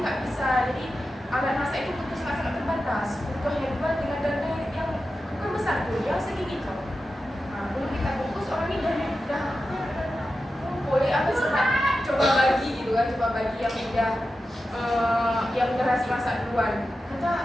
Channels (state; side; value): normal; both; correlation 0.92